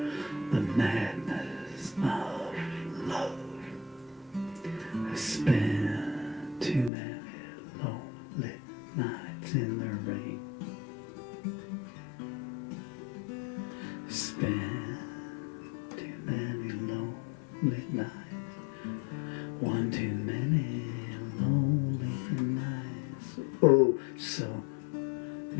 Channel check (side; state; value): right; drops out; at 6.9 s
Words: the madness of love. I spent too many lonely nights in the rain. I spent too many lonely nights. One too many lonely nights. Oh, so